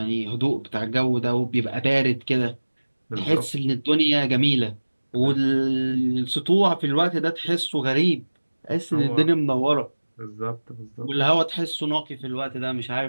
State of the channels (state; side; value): inverted; both; correlation -1.00